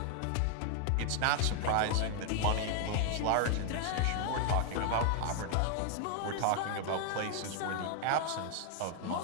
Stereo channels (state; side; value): different; both; correlation 0.00